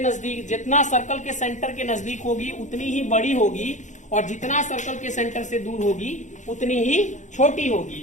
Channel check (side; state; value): right; late; 0.35 ms